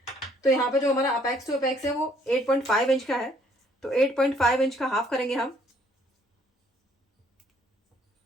तो यहाँ पे जो हमारा अपेक्स टू अपेक्स है वो 8.5 इंच का है, तो 8.5 इंच का हाफ करेंगे हम।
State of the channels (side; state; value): both; normal; correlation 0.64